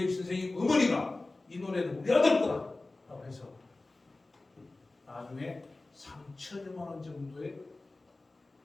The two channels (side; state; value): right; quieter; 3.1 dB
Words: 선생님 어머니가 이 노래는 우리 아들 거다라고 해서 나중에 3천여만 원 정도의